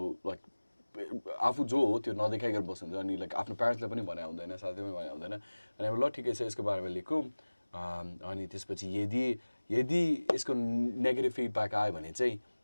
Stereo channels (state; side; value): inverted; both; correlation -1.00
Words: लाइक आफू जो हो त्यो नदेखाइकन बस्नुहुन्छ अनि लाइक आफ्नो प्यारेन्ट्सलाई पनि भने हुँदैन साथै पनि भने हुँदैन अनि अब ल ठिकै छ यसको बारेमा लेखौँ अनि त्यसपछि यदि यसको नेगेटिभ फिडब्याक आयो भने चाहिँ